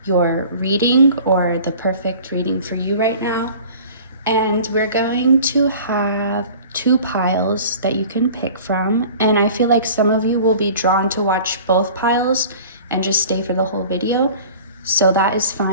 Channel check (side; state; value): both; inverted; correlation -0.44